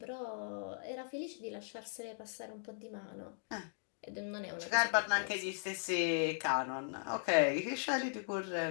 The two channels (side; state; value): right; silent; digital silence